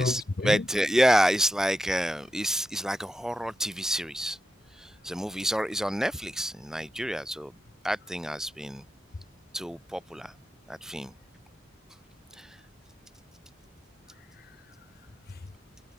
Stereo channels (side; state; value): both; normal; correlation 0.87